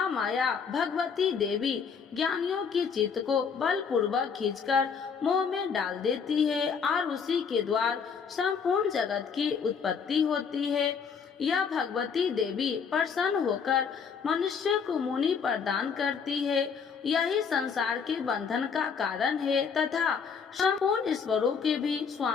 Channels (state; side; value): quieter; right; 6.2 dB